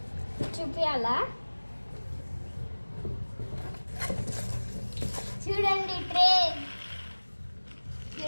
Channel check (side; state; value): both; inverted; correlation -1.00